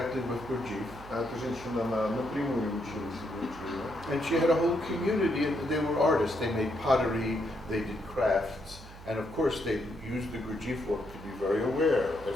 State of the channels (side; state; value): right; noise; hum, 17 dB below the sound